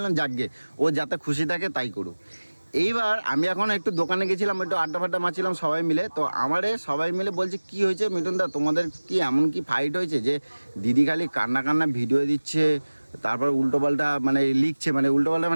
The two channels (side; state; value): both; inverted; correlation -1.00